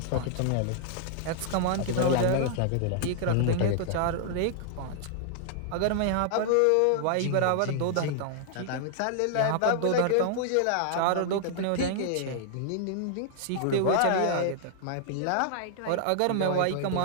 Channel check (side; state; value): both; different; correlation -0.01